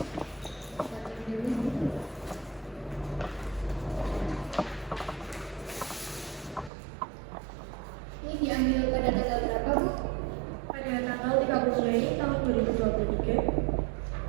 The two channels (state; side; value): drops out; left; at 6.7 s